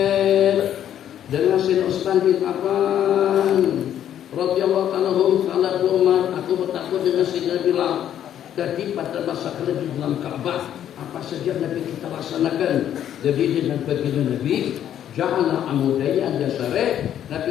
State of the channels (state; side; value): quieter; right; 10.5 dB